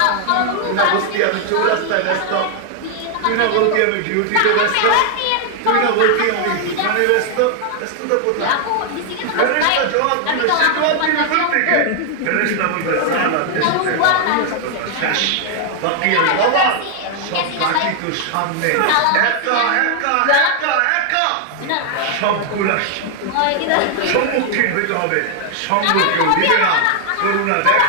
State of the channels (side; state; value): both; different; correlation 0.00